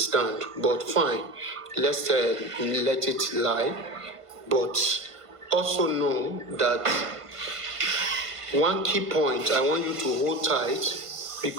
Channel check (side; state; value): left; late; 1.5 ms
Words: but fine. Let's let it lie. But also know that one key point I want you to hold tight